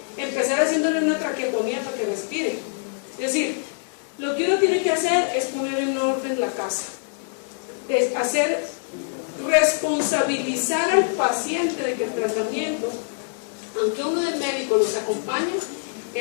empezar haciéndole una traqueotomía para que respire. Es decir, lo que uno tiene que hacer es poner en orden la casa, es responsabilizar al paciente de que el tratamiento, aunque uno del médico los acompañe,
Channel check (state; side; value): silent; right; digital silence